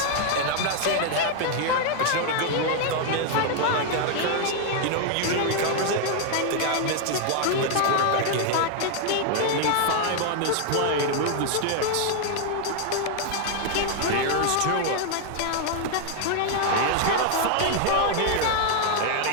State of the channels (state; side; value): different; both; correlation 0.00